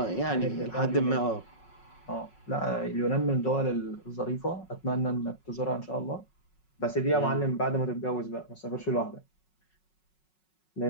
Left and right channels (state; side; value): late; right; 5.4 ms